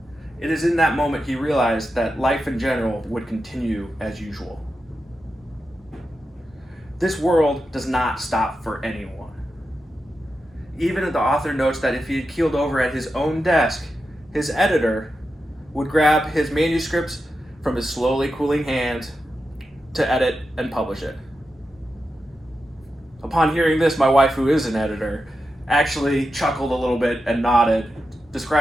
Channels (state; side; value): normal; both; correlation 0.89